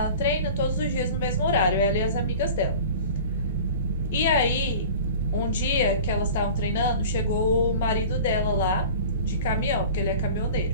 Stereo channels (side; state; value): both; inverted; correlation -0.40